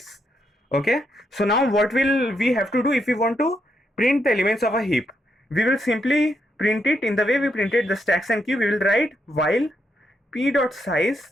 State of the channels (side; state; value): both; normal; correlation 0.80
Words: Okay, so now what will we have to do if we want to print the elements of a heap? We will simply print it in the way we printed the stacks and queue. We will write while p dot